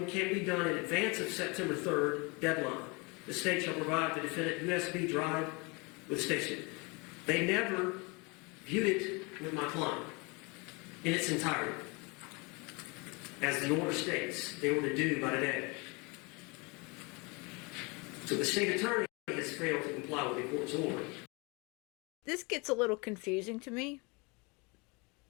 can be done in advance of September 3rd deadline. The state shall provide the defendant USB drive with the station. They never viewed it with my client in its entirety. As the order states, they were to do by today. So the state attorney has failed to comply with the court's order. This gets a little confusing to me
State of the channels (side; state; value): right; quieter; 28.8 dB